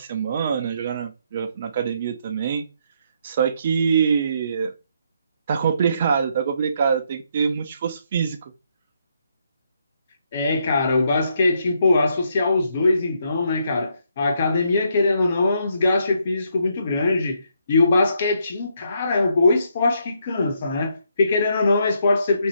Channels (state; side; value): inverted; both; correlation -0.75